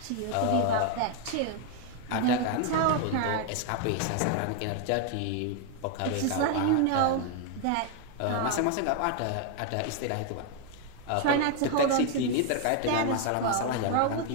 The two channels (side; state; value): both; different; correlation 0.00